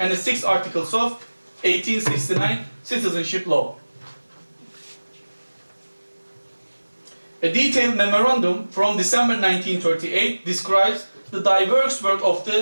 the 6th articles of 1869 citizenship law. A detailed memorandum from December 1938 describes the diverse work of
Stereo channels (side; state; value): both; inverted; correlation -1.00